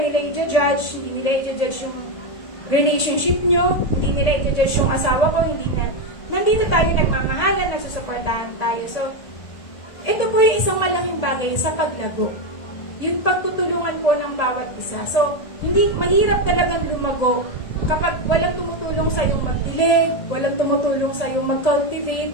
i-judge, hindi nila i-judge yung relationship nyo, hindi nila i-judge yung asawa ko, hindi na, nandito tayo nagmamahalan, nagsusuportahan tayo. So, ito po yung isang malaking bagay sa paglago. Yung pagtutulungan po ng bawat isa. So, hindi, mahirap talagang lumago kapag walang tumutulong sa yung magdilig, walang tumutulong sa yung mag-cultivate.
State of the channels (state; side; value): late; right; 1.8 ms